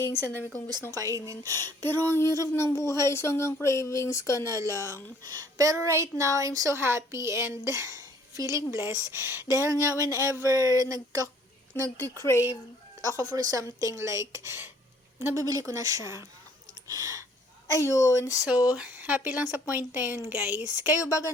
ang dami kong gustong kainin. Pero, ang hirap ng buhay, so hanggang cravings ka na lang. Pero right now, I'm so happy and feeling blessed. Dahil nga, whenever nagki-crave ako for something like, nabibili ko na siya. Ayun, so, happy lang sa point na yun, guys. Kayo ba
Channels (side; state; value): both; normal; correlation 0.59